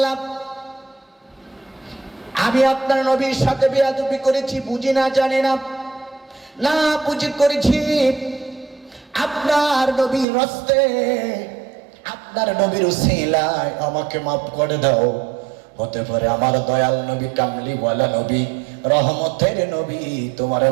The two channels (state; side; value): drops out; left; at 10.2 s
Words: আমি আপনার নবীর সাথে বেয়াদবি করেছি, বুঝি না, জানি না, না বুঝি করেছি, আপনার নবীর রাস্তে, আপনার নবীর উসিলায় আমাকে মাফ করে দাও। হতে পারে আমার দয়াল নবী, কামলি ওয়ালা নবী, রহমতের নবী তোমারে